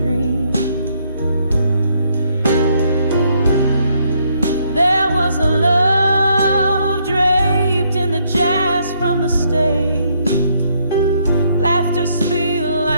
There was a love draped in the jazz from the stage. Laughter spilled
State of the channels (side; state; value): both; inverted; correlation -0.71